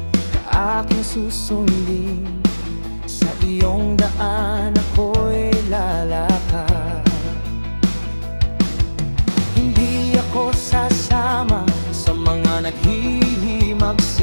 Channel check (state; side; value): inverted; both; correlation -1.00